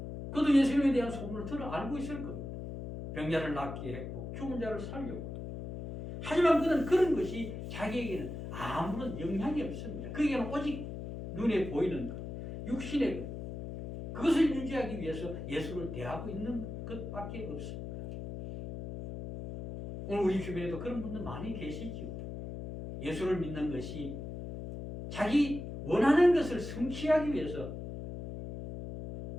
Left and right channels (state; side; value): noise; left; hum, 8 dB below the sound